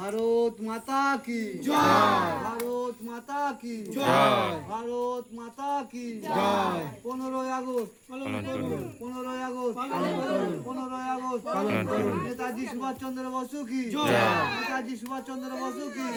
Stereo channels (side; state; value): both; identical; correlation 1.00